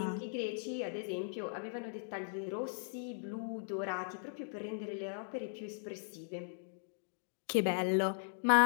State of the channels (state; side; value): silent; right; digital silence